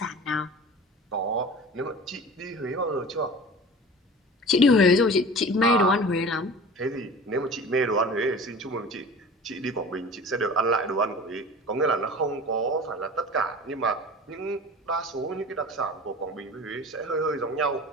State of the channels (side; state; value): both; normal; correlation 0.39